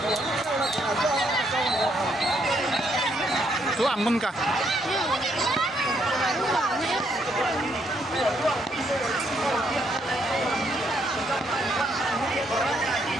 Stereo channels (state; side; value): normal; both; correlation 0.73